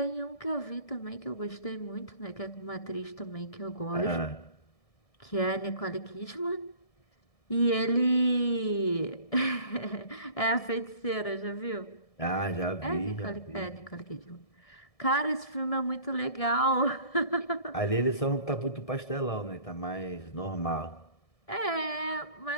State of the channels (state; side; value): late; right; 1.7 ms